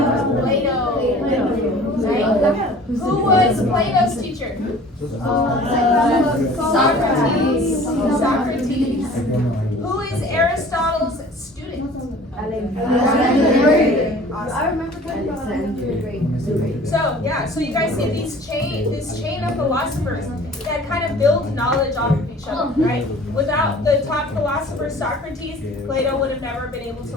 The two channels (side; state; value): both; normal; correlation 0.47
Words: Right? Who was Plato's teacher? Socrates. Who is Aristotle's student? I remember talking about Alexander. So you guys see this chain of philosophers that kind of build knowledge off of each other, right? Without the top philosopher Socrates, Plato would have never been able to